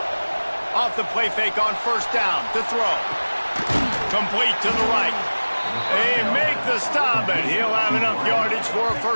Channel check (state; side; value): inverted; both; correlation -1.00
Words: Off the play fake on first down to throw. Complete to the right. They make the stop, and he'll have enough yardage for a